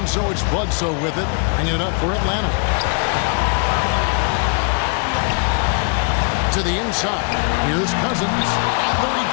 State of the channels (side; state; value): right; quieter; 39.8 dB